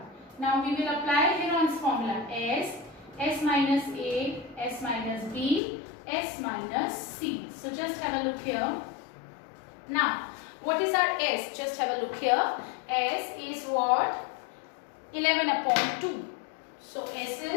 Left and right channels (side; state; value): right; drops out; at 5.6 s